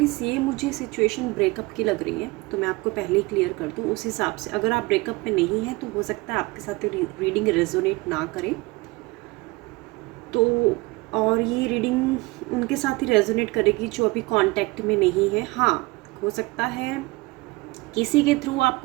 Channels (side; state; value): left; quieter; 23.6 dB